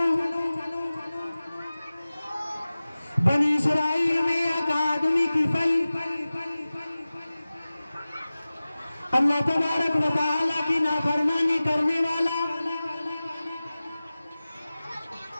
بنی اسرائیل میں ایک آدمی کی پھل اللہ تبارک و تعالیٰ کی نافرمانی کرنے والا،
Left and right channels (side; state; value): both; inverted; correlation -0.97